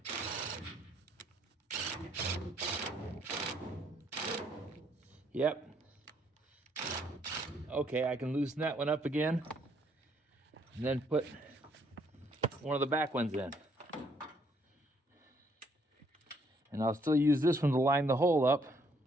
Yep. Okay, I can loosen that one up again and then put one of the back ones in. And I'll still use this one to line the hole up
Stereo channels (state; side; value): normal; both; correlation 0.68